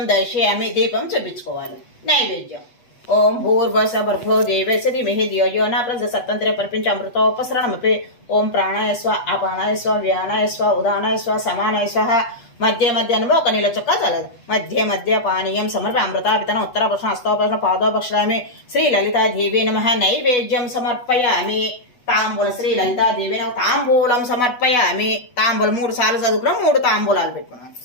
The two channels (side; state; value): right; late; 8.1 ms